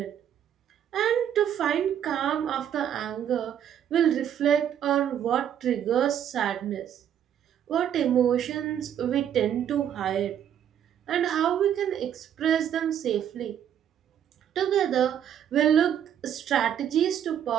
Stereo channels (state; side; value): quieter; left; 9.6 dB